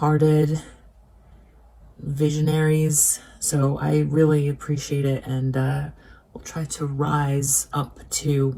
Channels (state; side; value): identical; both; correlation 1.00